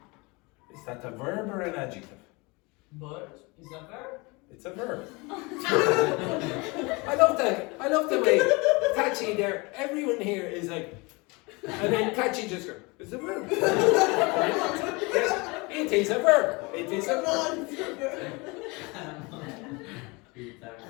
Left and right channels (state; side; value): quieter; right; 26.6 dB